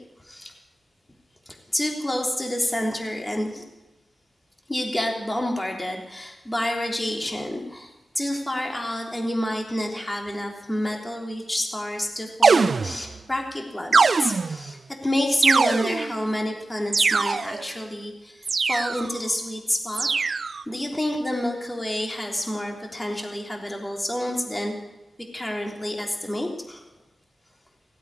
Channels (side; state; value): both; normal; correlation 0.94